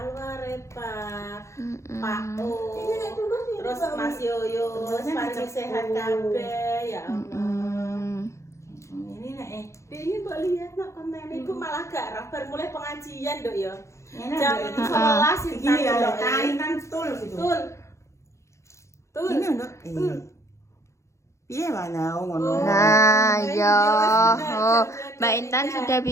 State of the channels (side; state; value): right; late; 0.14 ms